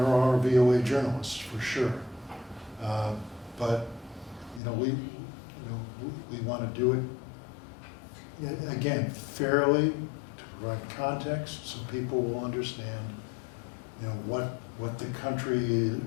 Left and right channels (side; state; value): right; drops out; at 4.6 s